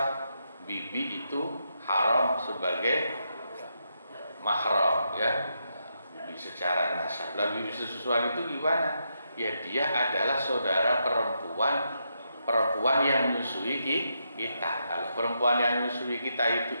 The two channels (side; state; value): both; inverted; correlation -0.82